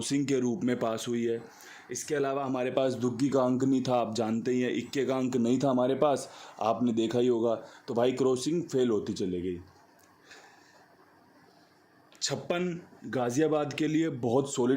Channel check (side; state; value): both; identical; correlation 1.00